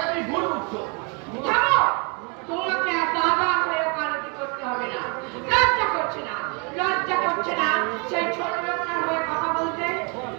তুমি ভুল বুঝছো। থামো, তোমাকে আর দাদা হয়ে ওকালতি করতে হবে না। লজ্জা করছে না, লজ্জা করছে না সেই ছোট লোকটার হয়ে কথা বলতে।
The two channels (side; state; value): left; quieter; 33.8 dB